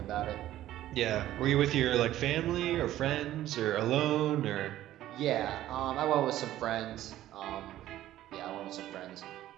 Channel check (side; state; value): left; quieter; 13.7 dB